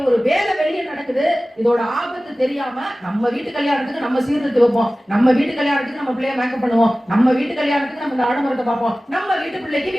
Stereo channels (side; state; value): both; normal; correlation 0.97